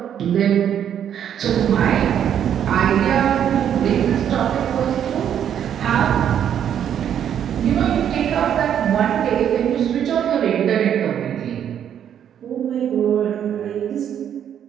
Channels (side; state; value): left; quieter; 9.4 dB